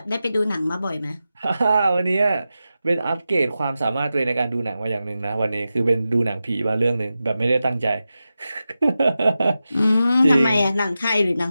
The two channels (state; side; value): inverted; both; correlation -0.92